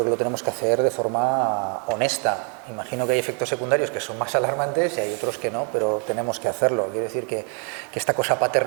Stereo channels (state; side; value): quieter; left; 39.4 dB